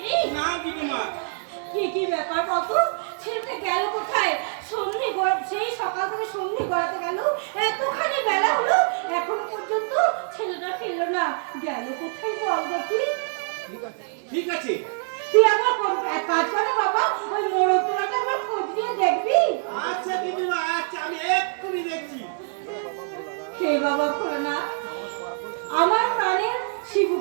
না গিন্নিমা। কি ব্যাপার বলতো? ছেলেটা গেল কোথায়? সেই সকাল থেকে সন্ধে গড়াতে গেল, এতখানি বেলা হলো, এখনো পর্যন্ত ছেলেটা ফিরলো না। গেল কোথায় বল দেখি? ঠিক আছে, তুই আমার এক কাজ কর না বাবা, ওই মোড়কটাকে আমার খোঁজ নিয়ে দেখবি। আচ্ছা গিন্নিমা, আচ্ছা আমি এক্ষুনি দেখছি। হে বাবা না, আমার প্রাণের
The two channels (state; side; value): silent; left; digital silence